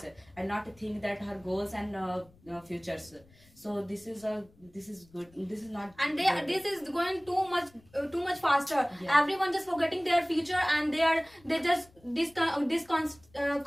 and not think that her goals and futures. So this is good. This is not. And good. this is going too much faster. Yeah. Everyone just forgetting their future, and they just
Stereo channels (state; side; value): noise; left; rumble, 29 dB below the sound